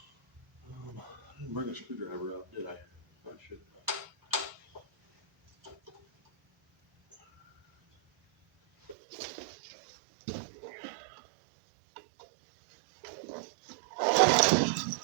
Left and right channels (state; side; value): drops out; left; at 9.0 s